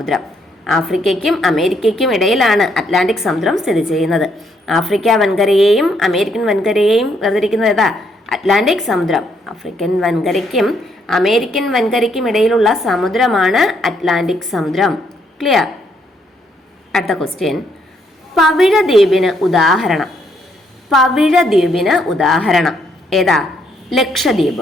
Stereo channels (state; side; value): normal; both; correlation 0.72